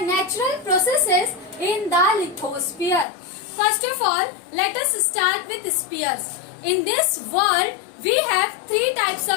natural processes in the lithosphere. First of all, let us start with spheres. In this world, we have three types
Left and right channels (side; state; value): right; drops out; at 3.1 s